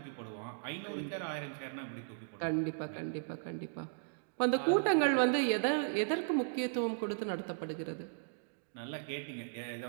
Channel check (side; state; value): left; silent; digital silence